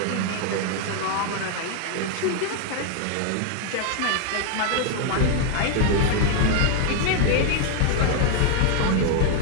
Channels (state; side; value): different; both; correlation 0.00